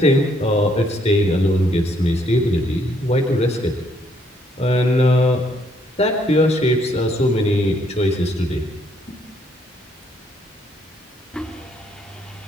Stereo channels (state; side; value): normal; both; correlation 0.69